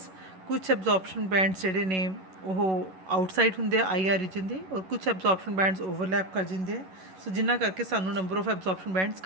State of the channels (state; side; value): late; left; 11 ms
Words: ਕੁਛ ਐਬਜ਼ੋਰਪਸ਼ਨ ਬੈਂਡਸ ਜਿਹੜੇ ਨੇ ਉਹ ਆਊਟਸਾਈਡ ਹੁੰਦੇ ਆ IR ਰੀਜਨ ਦੇ, ਔਰ ਕੁਛ ਐਬਜ਼ੋਰਪਸ਼ਨ ਬੈਂਡਸ ਓਵਰਲੈਪ ਕਰ ਜਾਂਦੇ ਆ. ਸੋ ਜਿਨ੍ਹਾਂ ਕਰਕੇ ਸਾਨੂੰ ਨੰਬਰ ਆਫ ਐਬਜ਼ੋਰਪਸ਼ਨ ਬੈਂਡਸ